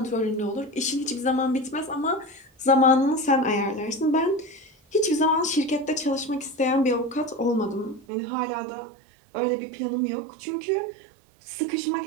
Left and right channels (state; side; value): drops out; left; at 8.1 s